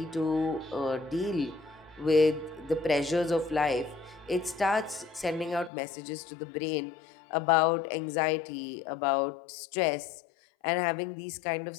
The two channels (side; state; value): right; drops out; at 5.7 s